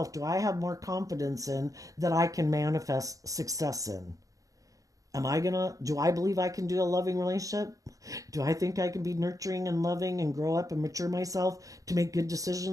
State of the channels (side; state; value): left; late; 0.17 ms